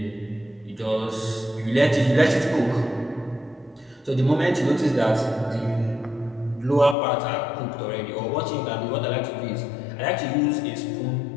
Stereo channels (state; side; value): drops out; right; at 7.0 s